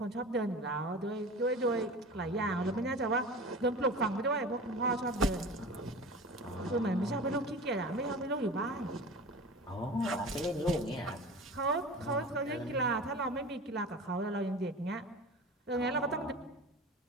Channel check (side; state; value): both; normal; correlation 0.35